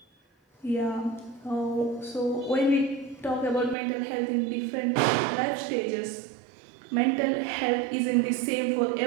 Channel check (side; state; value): left; drops out; at 3.8 s